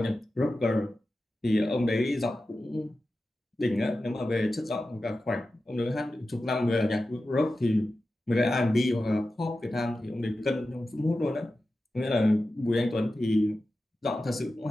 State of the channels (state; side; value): normal; both; correlation 0.93